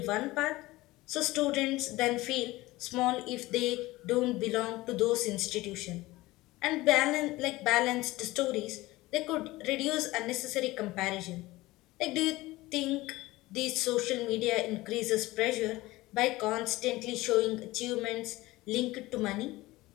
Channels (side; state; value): right; quieter; 19.1 dB